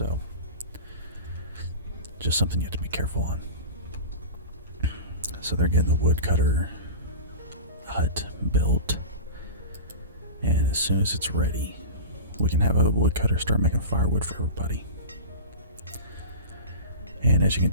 just something you have to be careful on. So they're getting the woodcutter hut built, and as soon as it's ready, we can have a woodcutter start making firewood for everybody. And as you can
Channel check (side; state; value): both; inverted; correlation -0.31